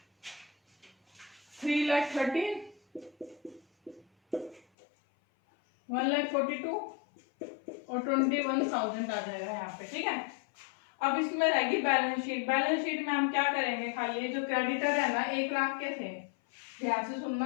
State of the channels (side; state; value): right; drops out; at 4.6 s